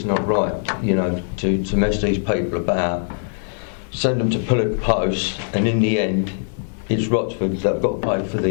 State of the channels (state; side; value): silent; right; 65 dB below the other